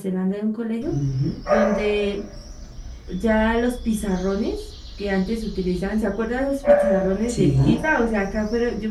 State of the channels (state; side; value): identical; both; correlation 1.00